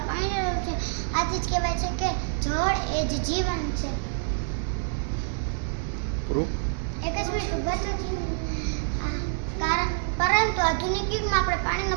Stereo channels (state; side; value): silent; left; digital silence